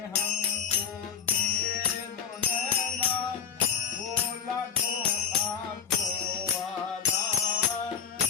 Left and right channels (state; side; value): quieter; right; 7.4 dB